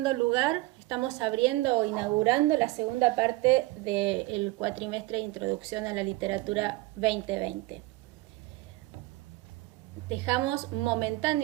abriendo o inaugurando la segunda parte del cuatrimestre de Introducción a la Literatura 2020. Dejamos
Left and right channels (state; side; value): quieter; left; 20.3 dB